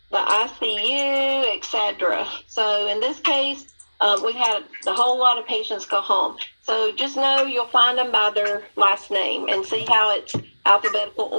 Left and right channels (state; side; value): inverted; both; correlation -1.00